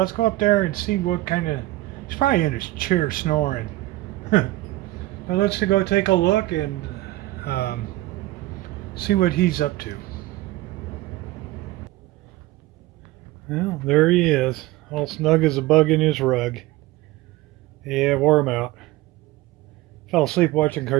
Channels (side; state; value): left; quieter; 17.6 dB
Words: go up there and see what kind of. He's probably in his chair snoring. But let's go take a look and see what he's up to. Well, there he is, all snug as a bug in his rug. Yeah, wore him out. Fell asleep watching